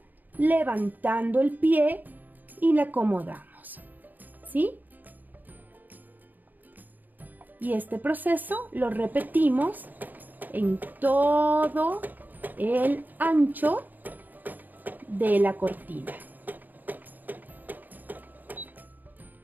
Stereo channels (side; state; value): left; late; 0.085 ms